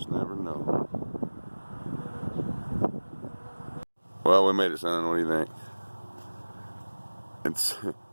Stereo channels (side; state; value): both; inverted; correlation -1.00